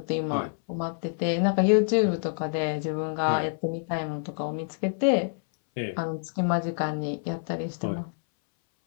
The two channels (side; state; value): right; silent; 60 dB below the other